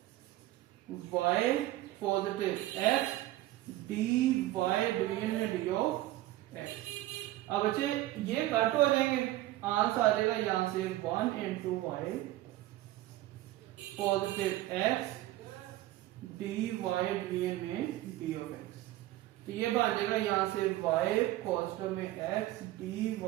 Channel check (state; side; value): quieter; left; 16.0 dB